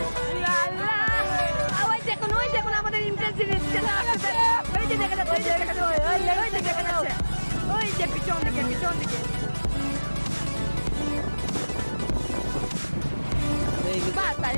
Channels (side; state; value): both; inverted; correlation -1.00